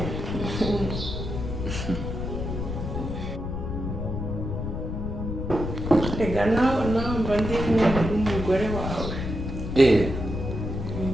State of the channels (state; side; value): noise; left; rumble, 4 dB below the sound